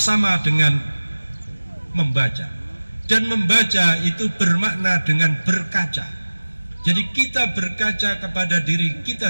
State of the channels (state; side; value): inverted; both; correlation -1.00